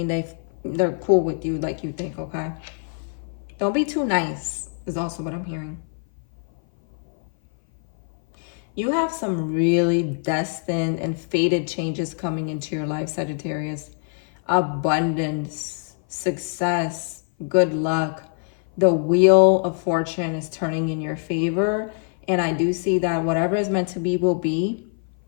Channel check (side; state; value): right; silent; 57 dB below the other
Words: they're cool with you like you think, okay? Don't be too nice is also what I'm hearing. You have some really destined and fated changes coming into your life, Sagittarius. Abundance, success, good luck. The wheel of fortune is turning in your favor. And I do see that whatever is meant to be will be.